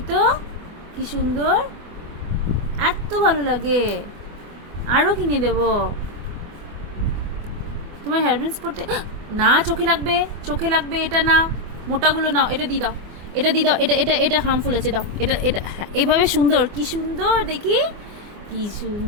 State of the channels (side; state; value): left; late; 24 ms